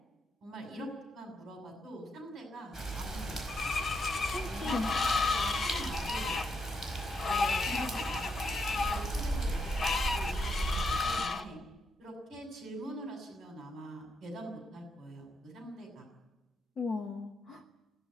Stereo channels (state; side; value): normal; both; correlation 0.80